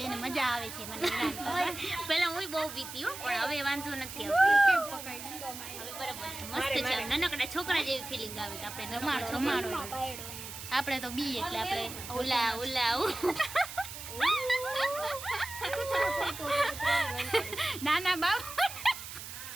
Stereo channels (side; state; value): right; noise; hiss, 10 dB below the sound